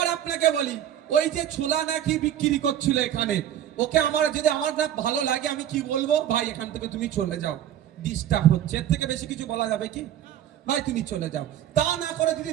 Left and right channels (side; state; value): left; quieter; 10.9 dB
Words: আপনাকে বলি, ওই যে ছোলা নাকি বিক্রি করছিল এখানে, ওকে আমার যদি আমার না ভালো লাগে, আমি কি বলবো, ভাই এখান থেকে তুমি চলে যাও, ডিস্টার্ব হচ্ছে। এর থেকে বেশি কিছু বলা যাবে কি? ভাই তুমি চলে যাও। তা না করে যদি